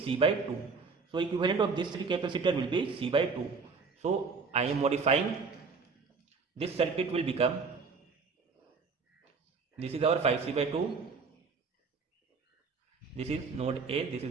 C by 2. So equivalent of this 3 capacitor will be C by 2. So I am modifying, this circuit will become, this is our 5C by 2, this is node A, this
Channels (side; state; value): left; quieter; 4.8 dB